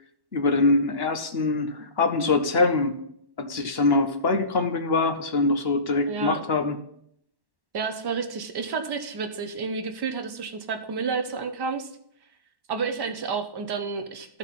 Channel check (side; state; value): left; late; 1.1 ms